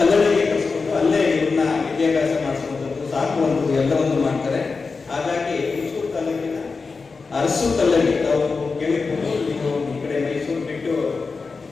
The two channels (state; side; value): quieter; right; 4.5 dB